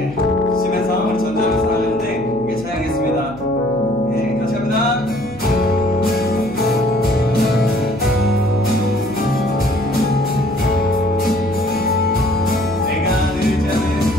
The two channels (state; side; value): noise; left; hum, 19 dB below the sound